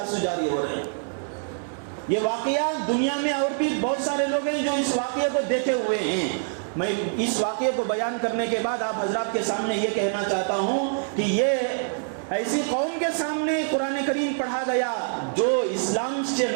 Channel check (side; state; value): left; silent; 61 dB below the other